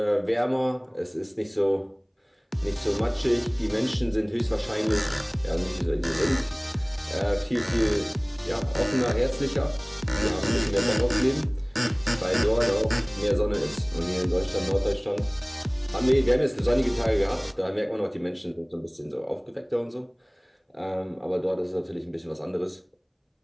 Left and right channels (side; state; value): both; identical; correlation 1.00